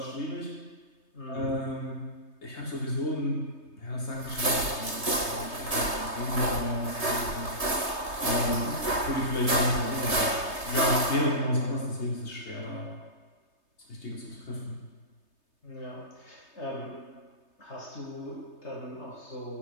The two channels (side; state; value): right; late; 3.3 ms